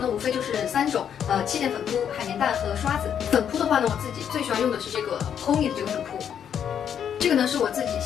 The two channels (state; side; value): quieter; right; 8.6 dB